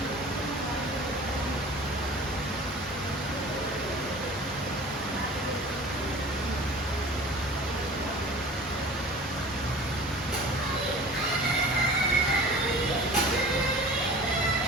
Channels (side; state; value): both; normal; correlation 0.42